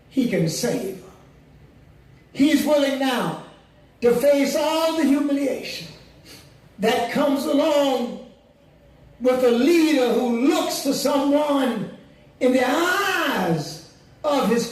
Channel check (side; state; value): both; identical; correlation 1.00